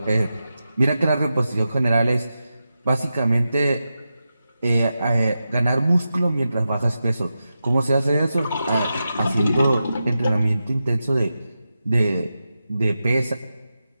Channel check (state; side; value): inverted; both; correlation -0.91